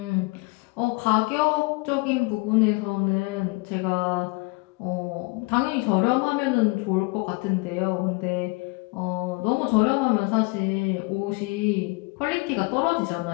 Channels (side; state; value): right; quieter; 27.7 dB